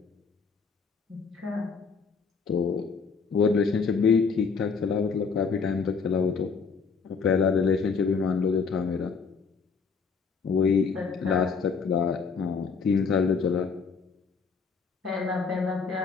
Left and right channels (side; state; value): right; quieter; 5.3 dB